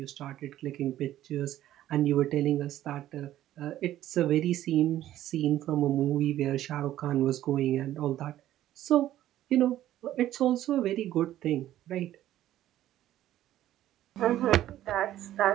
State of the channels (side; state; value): left; quieter; 13.1 dB